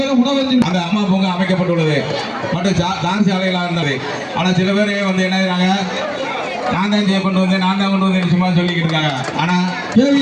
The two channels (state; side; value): identical; both; correlation 1.00